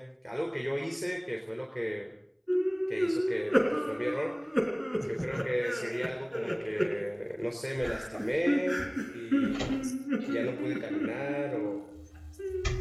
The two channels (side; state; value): both; identical; correlation 1.00